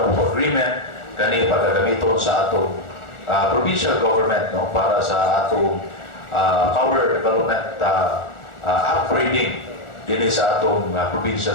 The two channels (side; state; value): right; late; 1.4 ms